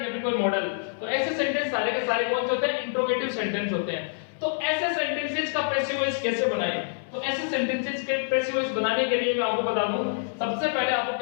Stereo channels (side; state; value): right; silent; 60 dB below the other